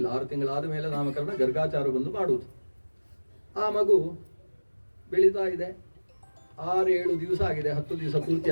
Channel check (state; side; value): inverted; both; correlation -1.00